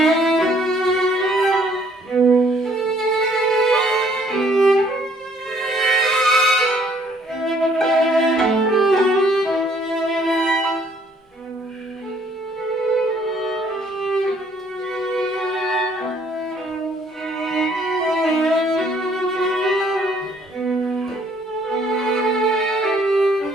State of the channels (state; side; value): normal; both; correlation 0.63